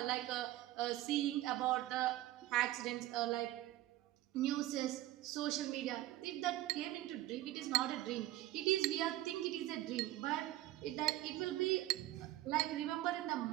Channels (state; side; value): quieter; left; 15.4 dB